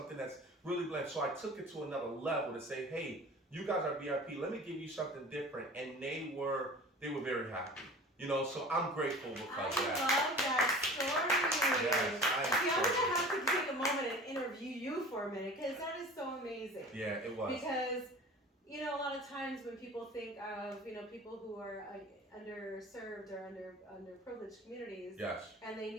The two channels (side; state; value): both; normal; correlation 0.41